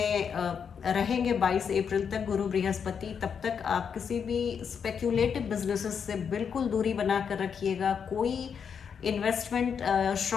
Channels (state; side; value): quieter; right; 7.0 dB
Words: रहेंगे 22 अप्रैल तक गुरु बृहस्पति, तब तक आप किसी भी स्पेक्यूलेटिव बिजनेसेस से बिल्कुल दूरी बना कर रखिएगा। कोई इन्वेस्टमेंट